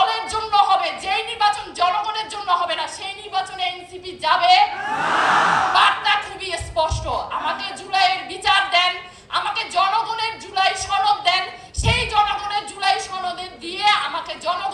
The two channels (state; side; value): identical; both; correlation 1.00